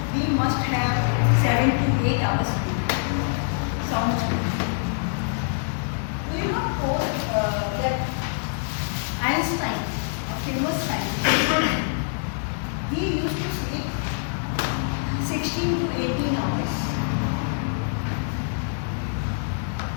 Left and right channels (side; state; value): right; silent; 57 dB below the other